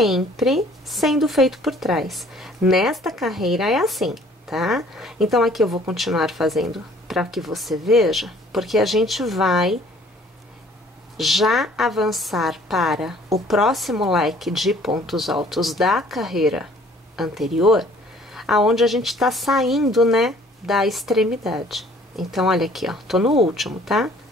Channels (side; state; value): both; normal; correlation 0.56